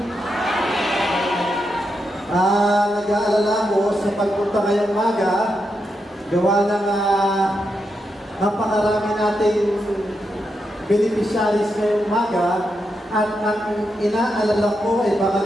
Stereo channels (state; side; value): normal; both; correlation 0.84